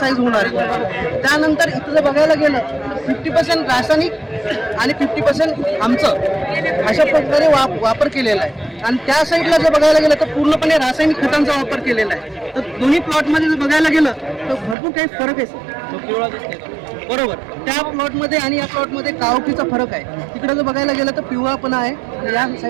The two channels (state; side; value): drops out; left; at 14.8 s